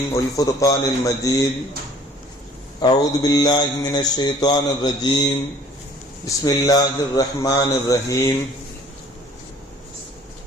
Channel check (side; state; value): both; normal; correlation 0.53